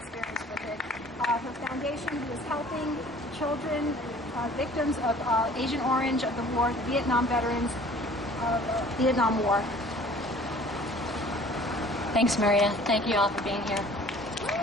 with it. Her foundation, who is helping children, victims of Agent Orange of the war, the Vietnam veterans of the Vietnam War. Thanks, Maria. Thank you all for being here.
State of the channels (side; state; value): both; normal; correlation 0.50